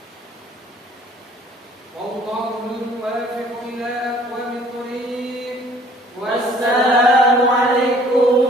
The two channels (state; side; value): normal; both; correlation 0.56